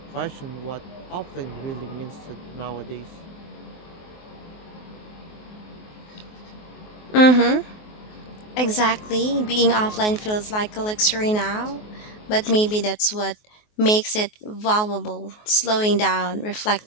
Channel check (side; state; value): right; late; 24 ms